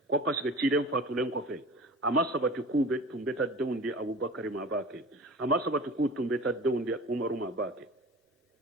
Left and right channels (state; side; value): normal; both; correlation 0.38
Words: ko parce que ciden fatulen ko fe amma sabati ku be tumbeta dawndi abubakar ma bake amma sabati ku tumbeta dawndi umaru ma bake